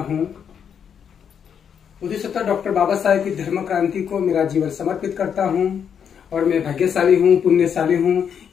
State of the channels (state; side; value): quieter; right; 7.8 dB